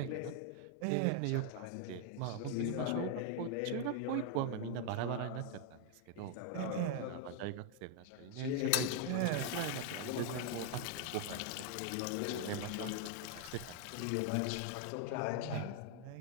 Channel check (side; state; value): both; different; correlation 0.00